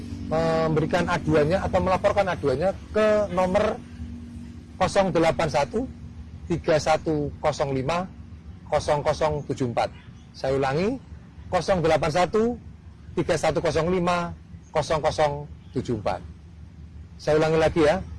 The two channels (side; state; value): both; identical; correlation 1.00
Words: memberikan aduannya atau melaporkan aduannya ke nomor 081 3105 0074. Saya ulangi, 081 3105 0074. Saya ulangi lagi ya,